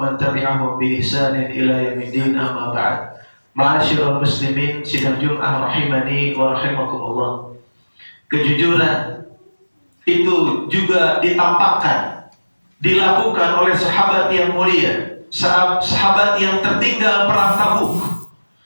man tabi'ahum bi ihsanin ila yaumiddin, amma ba'd. Ma'asyiral muslimin sidang Jumat rahimani wa rahimakumullah. Kejujuran itu juga ditampakkan, dilakukan oleh sahabat yang mulia, sahabat yang tertinggal perang Tabuk,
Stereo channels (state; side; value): inverted; both; correlation -1.00